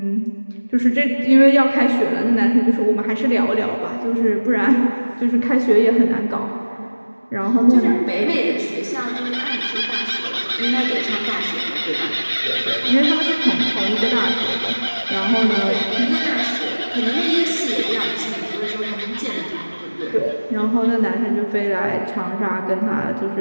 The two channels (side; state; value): both; inverted; correlation -1.00